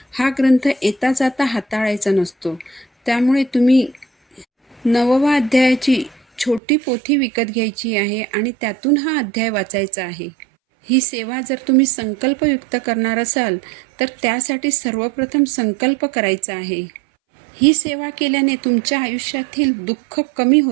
हा ग्रंथ येता जाता हाताळायचा नसतो. त्यामुळे तुम्ही 9वा अध्यायाची छोटी पोथी विकत घ्यायची आहे आणि त्यातून हा अध्याय वाचायचा आहे. ही सेवा जर तुम्ही संकल्पयुक्त करणार असाल तर त्यासाठी सर्वप्रथम संकल्प करायचा आहे. ही सेवा केल्याने तुमच्या आयुष्यातील दुःख कमी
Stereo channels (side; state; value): left; drops out; at 6.6 s